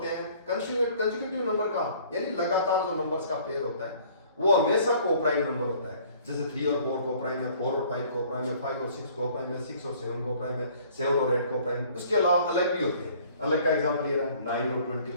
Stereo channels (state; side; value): inverted; both; correlation -0.55